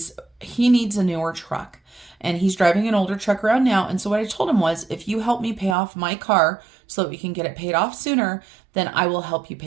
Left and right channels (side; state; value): left; drops out; at 5.8 s